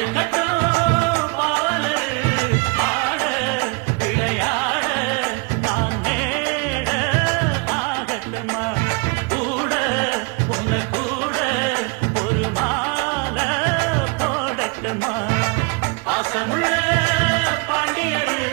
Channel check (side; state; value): left; quieter; 31.2 dB